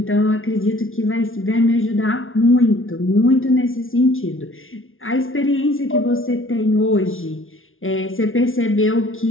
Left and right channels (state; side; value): late; right; 0.59 ms